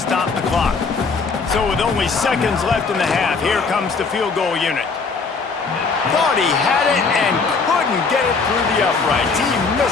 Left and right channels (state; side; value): quieter; right; 4.7 dB